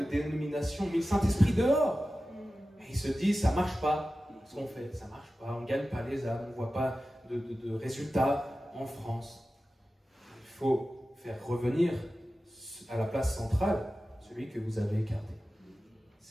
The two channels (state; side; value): normal; both; correlation 0.94